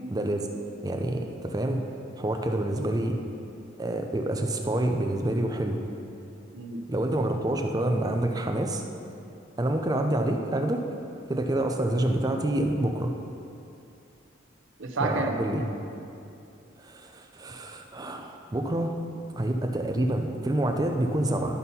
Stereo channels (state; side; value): normal; both; correlation 0.75